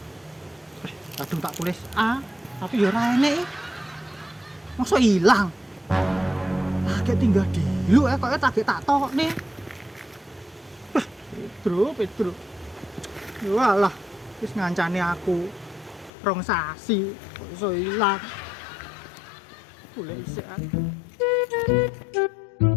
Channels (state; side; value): drops out; right; at 16.1 s